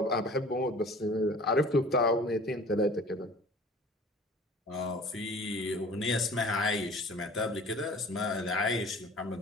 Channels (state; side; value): normal; both; correlation 0.46